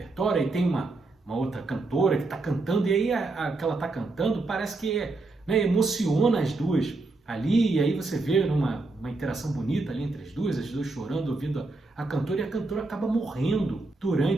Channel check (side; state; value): left; quieter; 3.3 dB